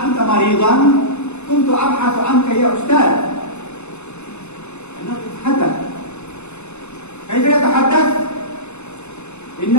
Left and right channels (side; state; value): right; late; 0.82 ms